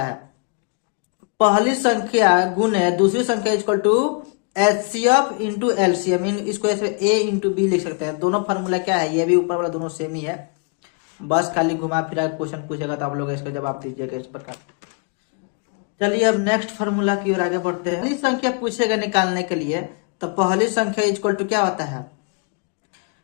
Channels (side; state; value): right; quieter; 34.9 dB